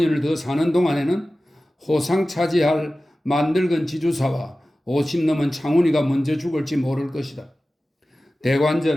더 사는 동안에는 호상 차지할 만늙은 지주사와 50 넘은 창훈이가 먼저 죽을지 모를 것이다.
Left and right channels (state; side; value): normal; both; correlation 0.96